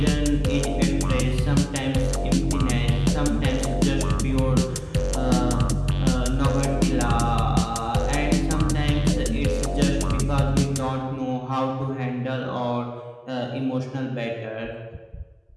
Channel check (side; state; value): both; identical; correlation 1.00